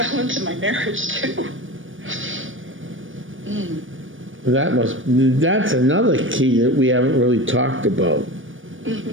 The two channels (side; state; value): left; late; 0.57 ms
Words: my marriage too. That's another key that we haven't really talked about.